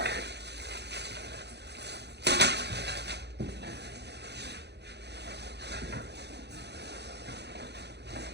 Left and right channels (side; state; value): left; late; 0.49 ms